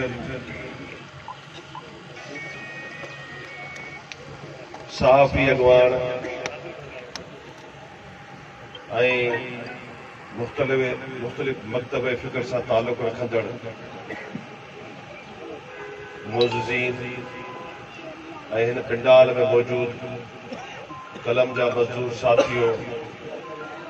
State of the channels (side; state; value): both; identical; correlation 1.00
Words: सहाफ़ी अगवान ऐं मुख़्तलिफ़ मकतब फ़िक्र सां ताल्लुक़ रखंदड़ मोज़ज़ीन ऐं हिन पिंडाल में मौजूद कलम जा मज़दूर साथियों,